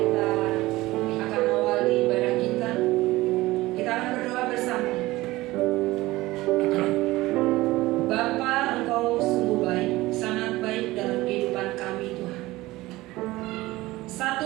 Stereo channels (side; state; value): left; quieter; 18.8 dB